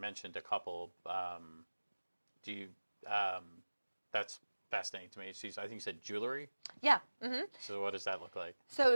a couple. That's fascinating to me. I think you said jewelry? Yeah. Mm-hmm. So what does that look like?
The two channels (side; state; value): both; inverted; correlation -1.00